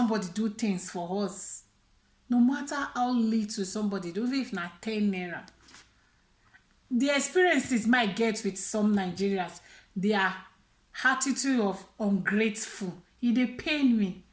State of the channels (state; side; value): identical; both; correlation 1.00